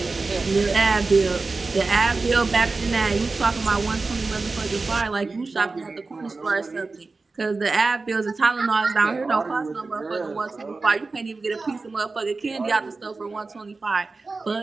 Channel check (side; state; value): left; quieter; 3.8 dB